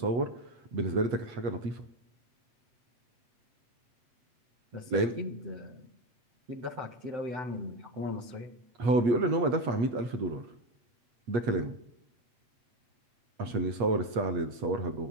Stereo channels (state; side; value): late; left; 8.3 ms